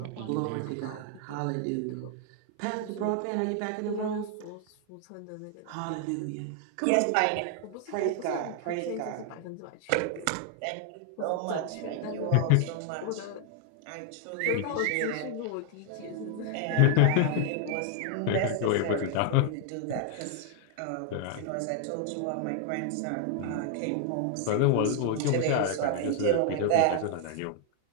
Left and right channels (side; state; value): both; different; correlation 0.00